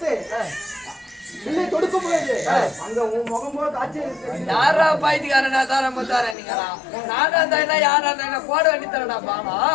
இல்லை தொடுக்க முடியாது. அங்க உன் முகம் போல காட்சி இருக்கு. யாரா பாய்த்துக்காரனா தார முத்தாரா நீங்களா? நானா இருந்தா யாரா இருந்தா போட வேண்டி தரடா பாமா.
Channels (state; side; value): drops out; right; at 6.4 s